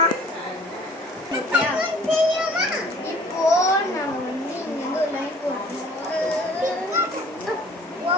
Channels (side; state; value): both; normal; correlation 0.52